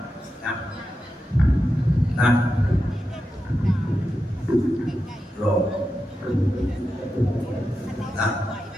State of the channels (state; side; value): normal; both; correlation 0.89